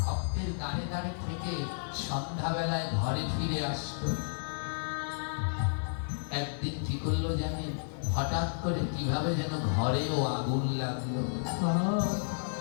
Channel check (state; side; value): silent; right; digital silence